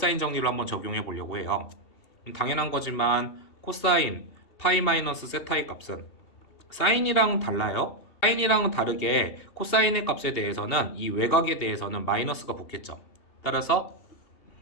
정리를 한번 적용해 보려고 해요. 당연한 거지만 코사인 파이 마이너스 세타의 값은 사인이랑 달라요. 사인이랑은 다르게 코사인의 값에 대해서는 이 외곽에 대해서는 마이너스가 붙겠죠. 따라서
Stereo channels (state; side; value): late; right; 2.7 ms